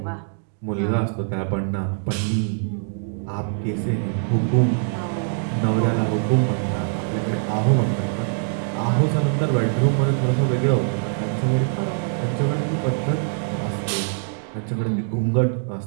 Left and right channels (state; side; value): silent; left; 63 dB below the other